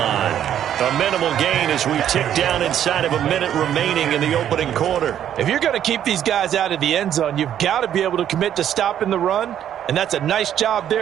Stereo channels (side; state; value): left; quieter; 10.3 dB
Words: A minimal gain as we tick down inside of a minute remaining in the opening quarter. If you're going to keep these guys out of the end zone, you've got to be able to commit to stopping the run. And that's a nice job